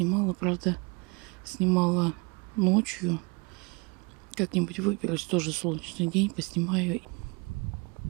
правда, снимала ночью. Как-нибудь выберусь, тоже солнечный день, поснимаю.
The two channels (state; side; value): quieter; left; 29.8 dB